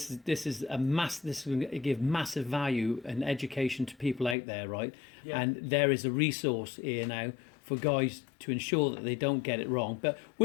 is going to give massive value and education to people out there, right? Yeah. And there is a resource here now for guys to ensure that they don't get it wrong. But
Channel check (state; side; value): drops out; right; at 4.4 s